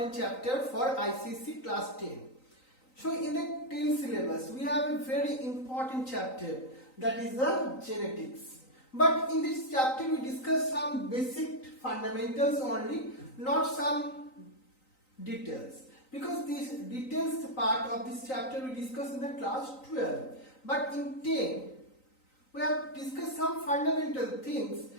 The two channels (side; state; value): right; late; 3.9 ms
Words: chapter for ICSE class 10. So in the 10 syllabus we have a very important chapter, that is the genetics. But in this chapter we discuss some basic fundamentals only, not some details. Because this details part of this chapter we discuss in the class 12. But in 10 we have discussed some fundamental things